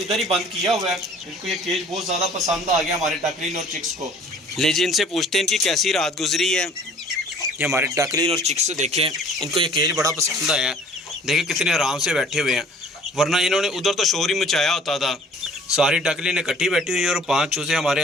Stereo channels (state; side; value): normal; both; correlation 0.52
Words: ही बंद किया हुआ है। इनको ये केज बहुत ज़्यादा पसंद आ गया हमारे डकलिन और चिक्स को। ले जी, इनसे पूछते हैं इनकी कैसी रात गुजरी है। ये हमारे डकलिन और चिक्स देखें, इनको ये केज बड़ा पसंद आया है। देखें कितने आराम से बैठे हुए हैं, वरना इन्होंने उधर तो शोर ही मचाया होता था। सारी डकलिन इकट्ठी बैठी हुई है और 5 चूजे हमारे